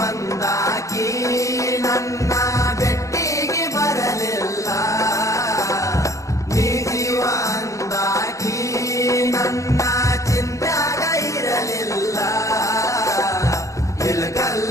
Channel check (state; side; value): late; right; 0.15 ms